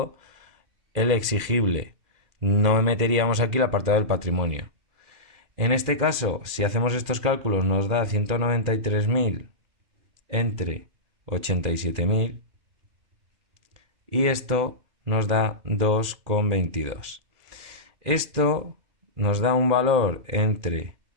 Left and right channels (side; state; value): left; late; 2.4 ms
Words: el exigible. No meteríamos aquí el apartado del patrimonio. En este caso, si hacemos estos cálculos, nos da 193.000 entre 87.000 y esto nos da 2,22. Esto nos da un valor entre